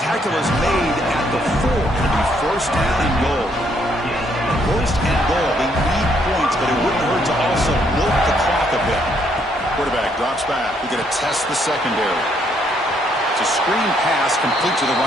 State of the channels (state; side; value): normal; both; correlation 0.70